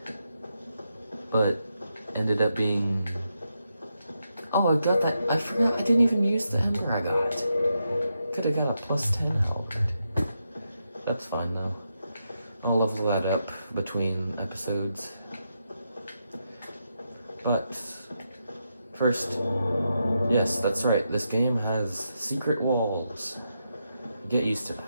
but ended up being... Oh, I got that. I forgot. I didn't even use the Ember I got. Could have got a +10 health. That's fine though. I'll level that up between episodes. But first, yes, that's right. This game has secret walls. Get used to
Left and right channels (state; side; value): inverted; both; correlation -0.84